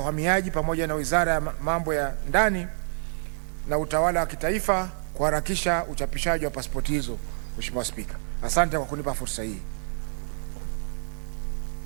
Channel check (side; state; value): left; silent; 60 dB below the other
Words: pamoja na Wizara ya Mambo ya Ndani na Utawala wa Kitaifa kuharakisha uchapishaji wa pasipoti hizo. Mheshimiwa Spika, asante kwa kunipa fursa hii.